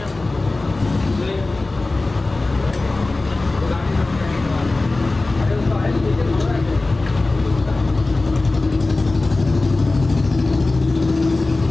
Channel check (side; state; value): right; quieter; 3.2 dB